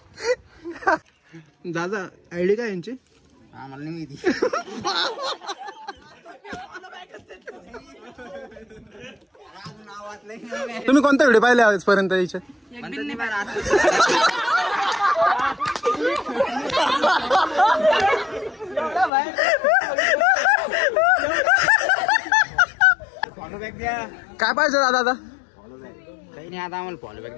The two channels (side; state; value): right; drops out; at 19.1 s